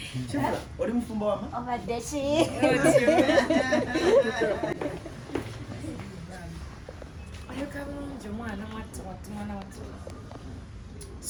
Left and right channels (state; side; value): identical; both; correlation 1.00